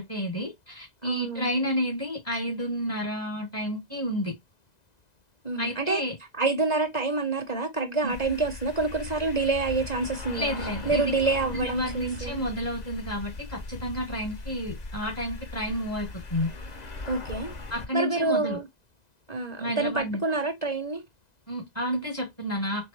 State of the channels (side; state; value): right; late; 2.0 ms